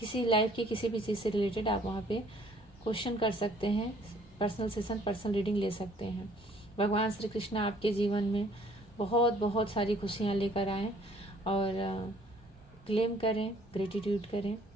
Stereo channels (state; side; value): normal; both; correlation 0.59